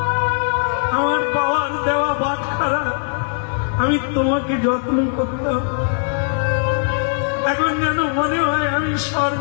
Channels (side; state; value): right; silent; digital silence